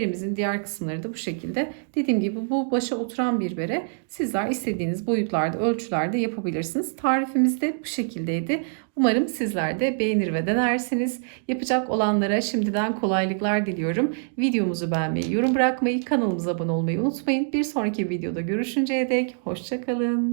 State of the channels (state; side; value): silent; left; digital silence